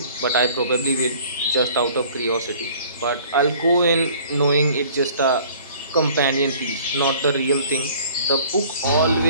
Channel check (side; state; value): both; inverted; correlation -0.51